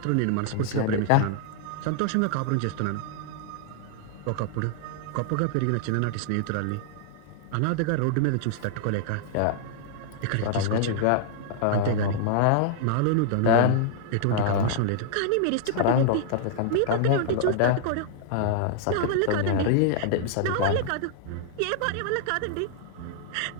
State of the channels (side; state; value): both; different; correlation -0.01